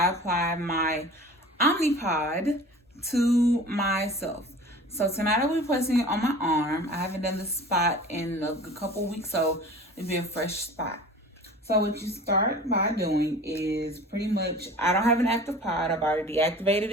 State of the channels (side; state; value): both; normal; correlation 0.41